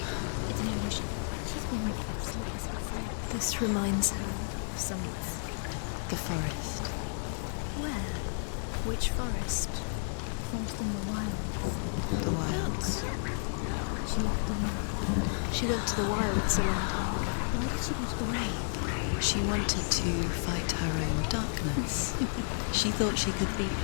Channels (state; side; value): silent; right; digital silence